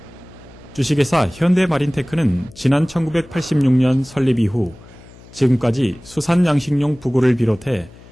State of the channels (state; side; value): noise; left; hum, 22 dB below the sound